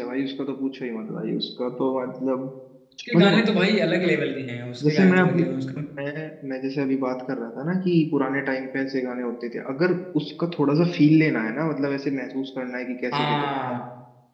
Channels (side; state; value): both; identical; correlation 1.00